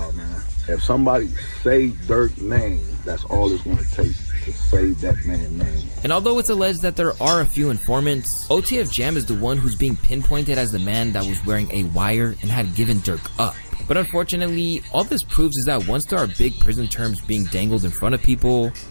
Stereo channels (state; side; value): inverted; both; correlation -1.00